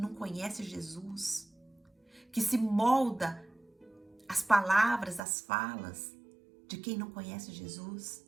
conhece Jesus? Que se molda as palavras, as falas de quem não conhece Jesus.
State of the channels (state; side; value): drops out; left; at 5.2 s